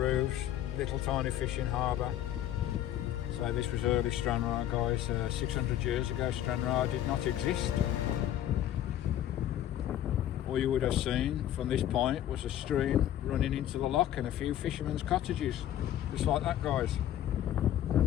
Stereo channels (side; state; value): right; quieter; 11.9 dB